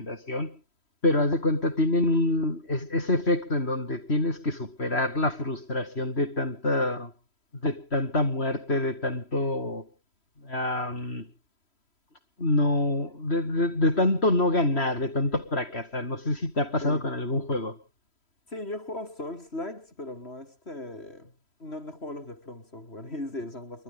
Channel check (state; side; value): late; right; 3.1 ms